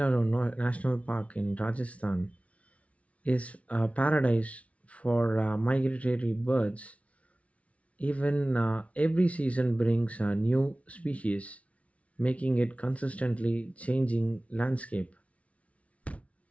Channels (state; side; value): late; right; 0.065 ms